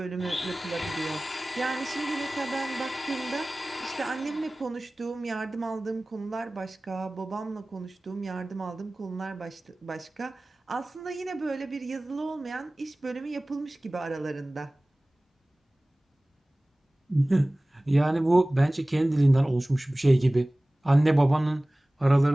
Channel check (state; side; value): normal; both; correlation 0.98